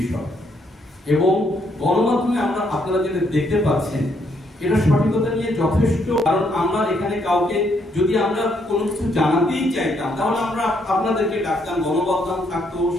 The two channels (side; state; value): both; normal; correlation 0.73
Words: এবং গণমাধ্যমে আপনারা যেটা দেখতে পাচ্ছেন এটা সঠিকতা নিয়ে যথেষ্ট। কারণ আমরা এখানে কাউকে যদি আমরা কোনো কিছু জানাতেই চাইতাম তাহলে আমরা আপনাদেরকে ডাকতাম, গণমাধ্যম থাকতো,